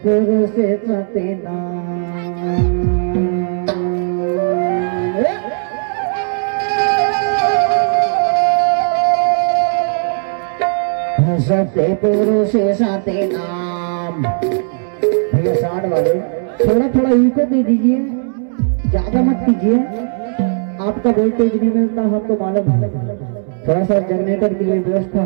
पुरुष सतेना सत्य पुरुष सते नाम। भैया साठ वाले थोड़ा थोड़ा इनको दे दीजिए, ज्यादा मत कीजिए। आपका वोल्टेज नहीं मिलता हमको मालूम है, थोड़ा सा जनरेटर के लिए व्यवस्था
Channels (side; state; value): left; silent; digital silence